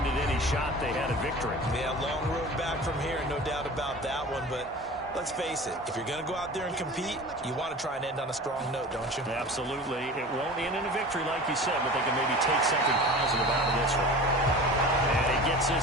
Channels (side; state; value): both; normal; correlation 0.37